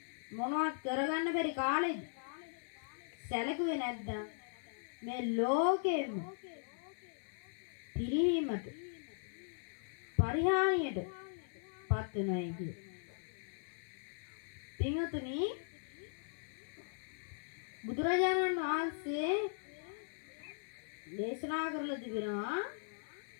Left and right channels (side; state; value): right; silent; digital silence